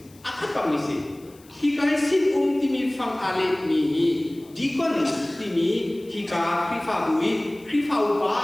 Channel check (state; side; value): noise; left; hiss, 27 dB below the sound